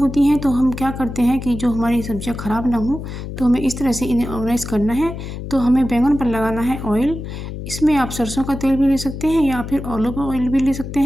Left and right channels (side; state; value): left; noise; hum, 8 dB below the sound